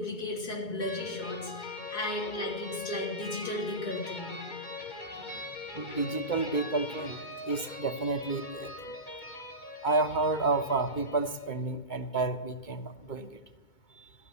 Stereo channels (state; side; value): late; right; 2.2 ms